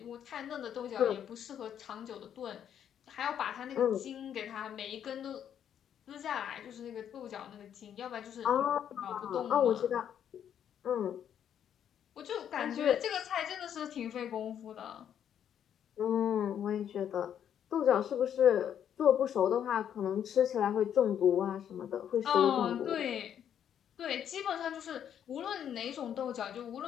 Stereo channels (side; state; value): right; quieter; 9.3 dB